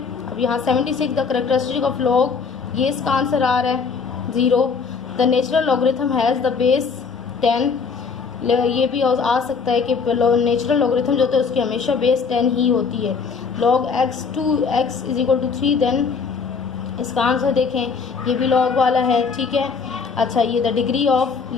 अब यहाँ 76 the characteristic of log, ये इसका answer आ रहा है 0। The natural logarithm has the base 10, ये भी आ सकता है कि नेचुरल लॉगरिथम जो होता है उसकी हमेशा बेस 10 ही होती है। log x 2x is equal to 3 then इसका आंसर देखें, ये भी लॉग वाला है, ठीक है। अच्छा, ये द डिग्री ऑफ,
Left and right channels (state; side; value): quieter; right; 5.3 dB